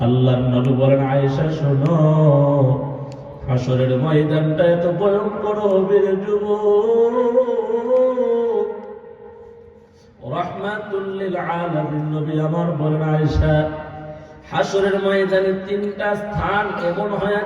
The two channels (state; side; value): identical; both; correlation 1.00